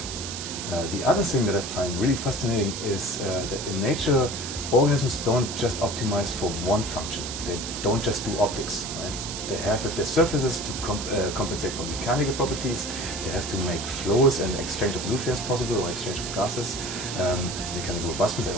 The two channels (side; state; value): right; noise; hiss, 6 dB below the sound